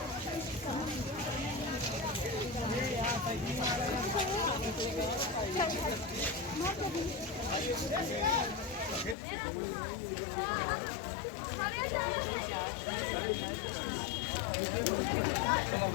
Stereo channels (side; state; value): right; drops out; at 9.2 s